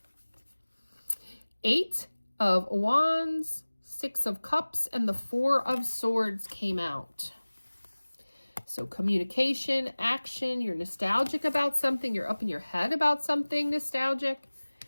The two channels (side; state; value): both; inverted; correlation -1.00